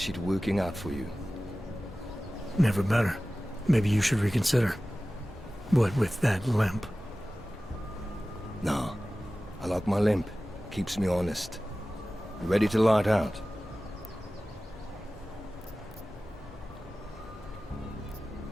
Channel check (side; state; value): both; normal; correlation 0.96